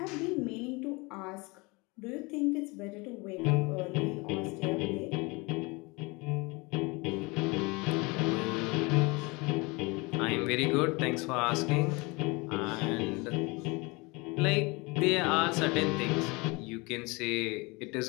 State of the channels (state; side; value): quieter; right; 26.4 dB